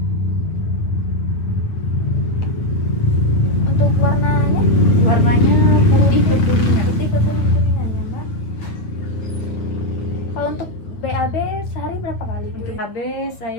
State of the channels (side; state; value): right; late; 8.7 ms